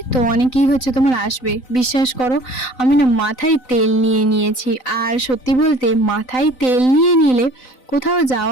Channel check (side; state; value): right; late; 3.9 ms